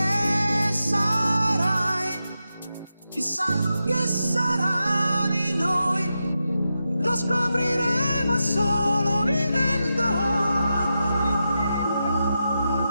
sarai, chissà che sarà di noi, lo scopriremo.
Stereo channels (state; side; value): inverted; both; correlation -0.89